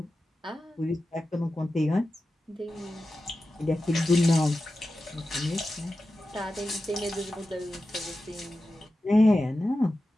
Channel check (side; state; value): both; normal; correlation 0.93